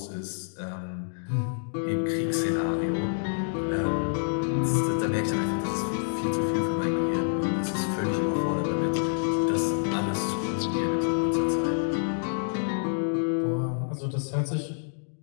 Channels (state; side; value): silent; right; digital silence